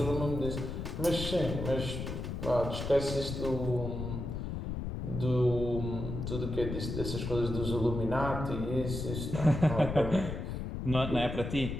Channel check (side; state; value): left; noise; rumble, 5 dB below the sound